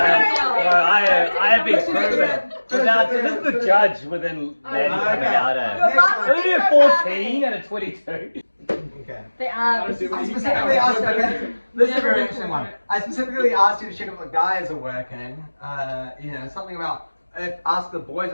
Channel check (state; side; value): inverted; both; correlation -1.00